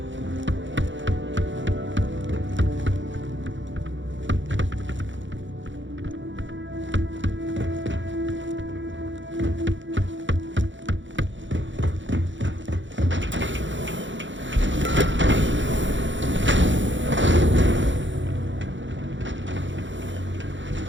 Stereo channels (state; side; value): late; left; 0.55 ms